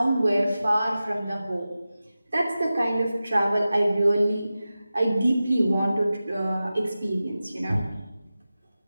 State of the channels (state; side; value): inverted; both; correlation -0.95